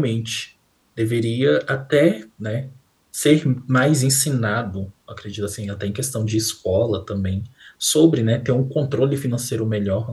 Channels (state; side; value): identical; both; correlation 1.00